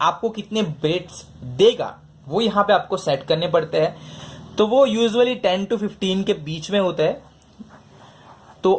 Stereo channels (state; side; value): identical; both; correlation 1.00